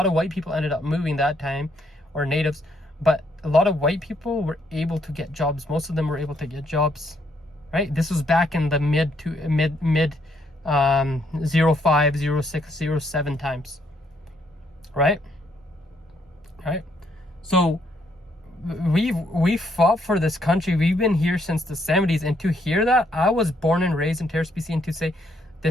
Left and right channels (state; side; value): normal; both; correlation 0.72